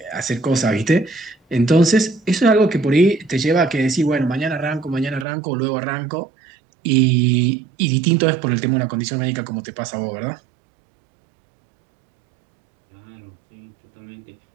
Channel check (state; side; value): drops out; left; at 5.2 s